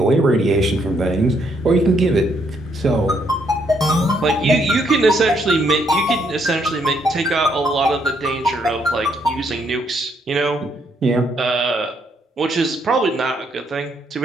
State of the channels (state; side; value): normal; both; correlation 0.72